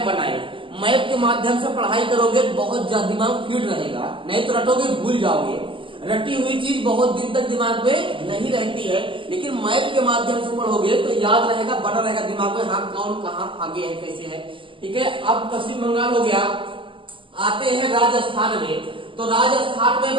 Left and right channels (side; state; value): left; late; 0.25 ms